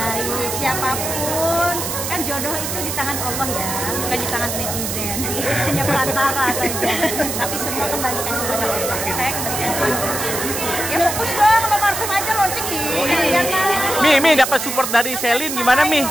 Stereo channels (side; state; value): right; noise; hiss, 4 dB below the sound